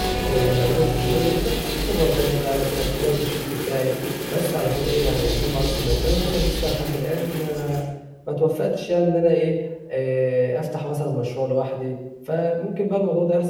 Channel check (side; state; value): both; identical; correlation 1.00